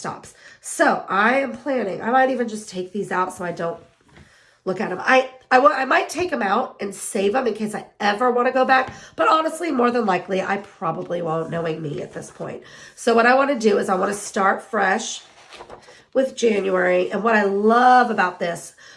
So I am planning, I might even just take these out so I don't look at them. I might take them out and save them in case I ever want to go back, but honestly, more than likely, I probably won't, knowing me at this point. So what I want to do is I want to start fresh with January. And what I love about this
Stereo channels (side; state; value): both; identical; correlation 1.00